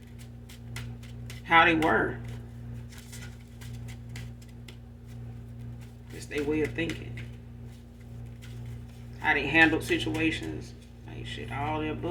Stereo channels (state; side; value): identical; both; correlation 1.00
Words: how they were, just their way of thinking, how they handled situations, like shit, all the